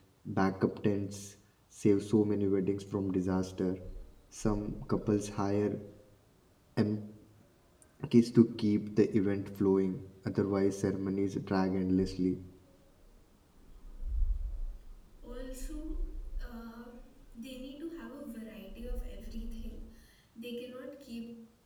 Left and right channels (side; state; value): both; identical; correlation 1.00